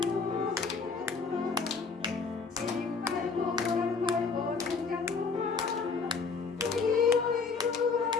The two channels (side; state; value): right; quieter; 4.9 dB